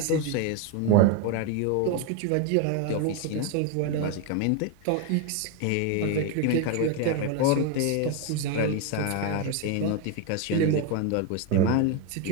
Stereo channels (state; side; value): different; both; correlation 0.02